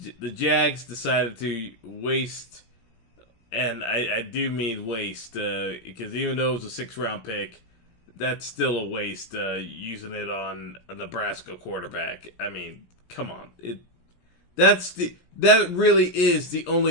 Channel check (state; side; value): late; right; 17 ms